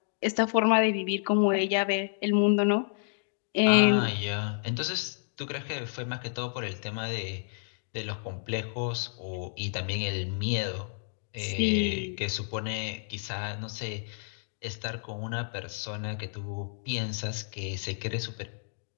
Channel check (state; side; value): silent; right; digital silence